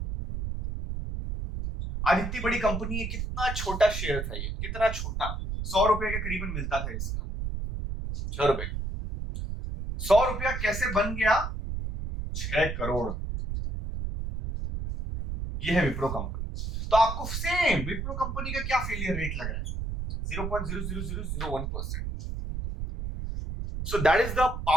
आज इतनी बड़ी कंपनी है, कितना छोटा शेयर था ये, कितना छोटा, 100 रुपए के करीबन मिलता था इसका, 6 रुपए। 100 रुपया कैसे बन गया 6 करोड़? ये है विप्रो कंपनी। तो आपको सेम विप्रो कंपनी का क्या फेलियर रेट लग रहा है? 0.00001%. So that is the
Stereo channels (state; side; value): noise; right; rumble, 4 dB below the sound